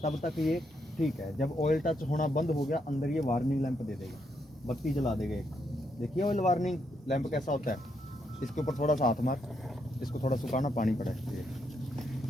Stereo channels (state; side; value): normal; both; correlation 0.78